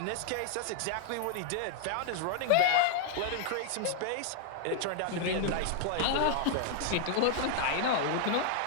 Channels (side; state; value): both; different; correlation 0.00